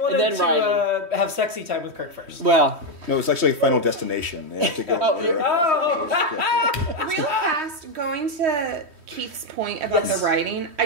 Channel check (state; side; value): late; left; 3.1 ms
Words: and then to Riley. Have sexy time with Kirk first. Well... No, it's actually Final Destination. They have to go... Real fast, going to Keith's point about the writing,